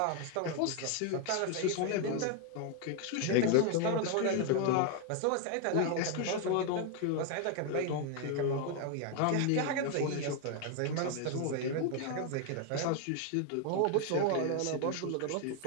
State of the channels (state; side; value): different; both; correlation 0.01